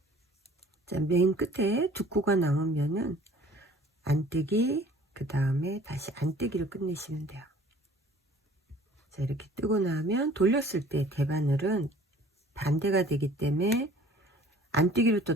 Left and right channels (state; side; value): normal; both; correlation 0.51